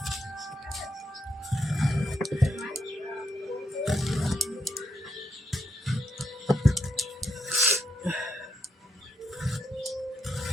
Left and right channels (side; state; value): both; normal; correlation 0.79